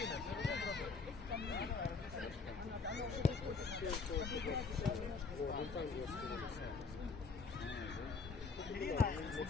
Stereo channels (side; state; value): right; quieter; 4.6 dB